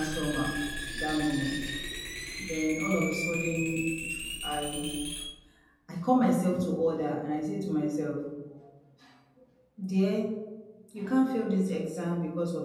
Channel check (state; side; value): identical; both; correlation 1.00